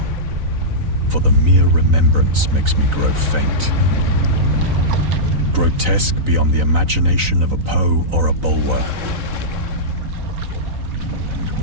for the mere remembrance makes me grow faint. Grotesque beyond the imagination of a Poe or a Bulwer.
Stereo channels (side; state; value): left; late; 3.9 ms